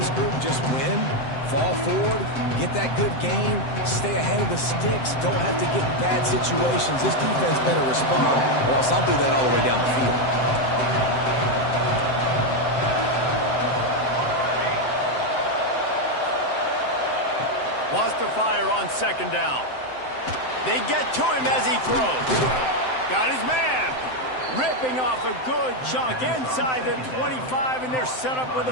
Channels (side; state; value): right; late; 7.8 ms